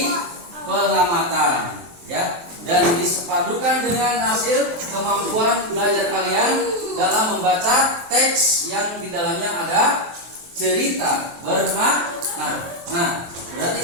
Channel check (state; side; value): late; left; 23 ms